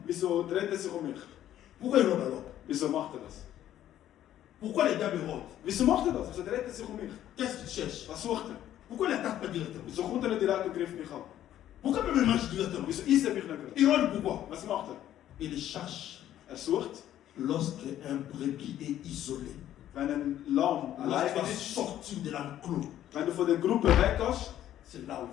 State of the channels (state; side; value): quieter; right; 12.0 dB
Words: Wieso dreht er sich um mich? Pourquoi il rôde alors? Wieso macht er das? Pourquoi le diable rôde? Wieso macht er das? Wieso dreht er sich um mich? Qu'est-ce qu'il cherche? Was sucht er? Pourquoi il n'attaque pas directement? Wieso kommt er nicht direkt und greift mich an? Pourquoi même il marche directement? Wieso isst er mich nicht gerade? Il rôde pourquoi? Was macht er? Il cherche Er sucht, lorsque un brebis est isolé. wenn ein Lamm allein Lorsqu'il est ist, sorti de l'enclos, wenn du von der Gruppe weggehst, c'est là où il